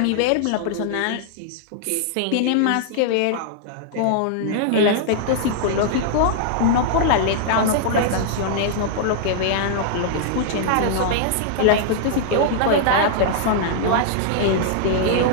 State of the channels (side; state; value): both; different; correlation -0.01